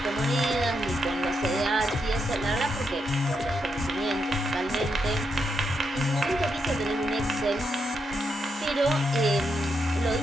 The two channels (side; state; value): both; normal; correlation 0.82